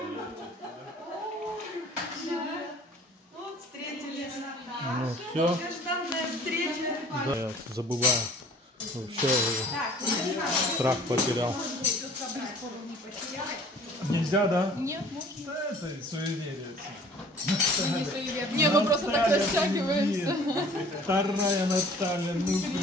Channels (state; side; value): normal; both; correlation 0.51